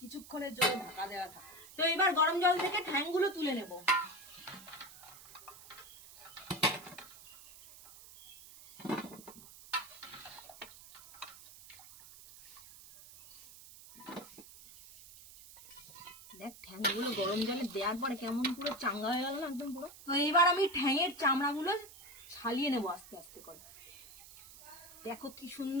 জন্য ঢাকা দেওয়া থাকে। তো এবার গরম জল থেকে ঠ্যাংগুলো তুলে নেব। দেখ ঠ্যাংগুলো গরম জলে দেওয়ার পরে কেমন পুরো চাঙ্গা হয়ে গেল না একদম পুরো। তো এবার আমি ঠ্যাংয়ের চামড়াগুলো ছালিয়ে নেবো আস্তে আস্তে করে। দেখো কি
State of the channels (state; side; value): noise; right; hiss, 18 dB below the sound